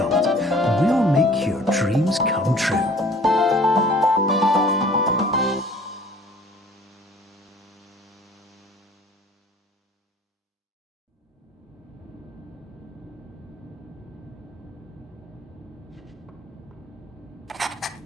we'll make your dreams come true.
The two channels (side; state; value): both; normal; correlation 0.50